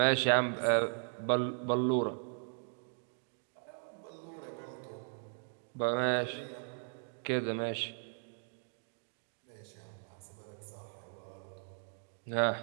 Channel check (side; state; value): left; silent; 53 dB below the other